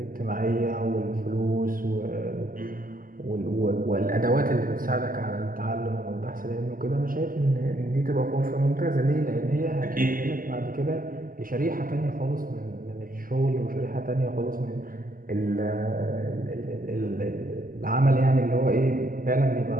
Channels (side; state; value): left; late; 0.41 ms